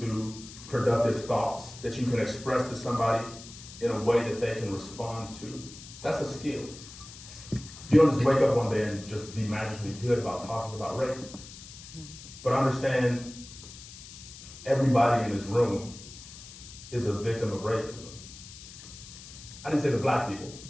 productive thoughts that you can express to somebody in a way that they can respond to. That's a skill. You don't just wake up one day and just be magically good about talking about race. But understand, everybody in this room is a victim of racism. I didn't say the black people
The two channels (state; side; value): noise; left; hiss, 16 dB below the sound